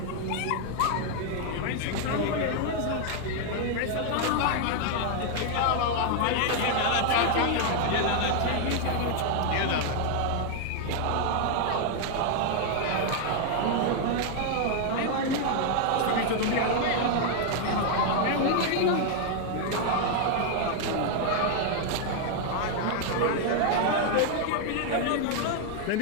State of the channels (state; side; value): different; both; correlation 0.00